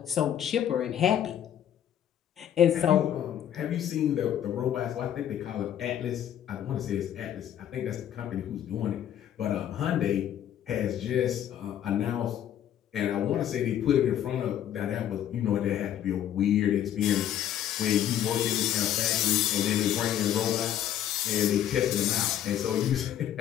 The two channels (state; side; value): quieter; right; 10.6 dB